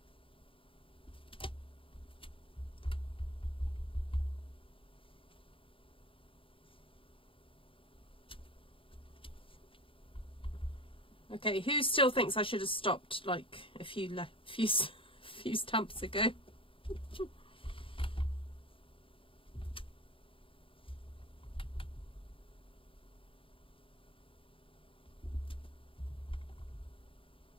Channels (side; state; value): right; late; 0.26 ms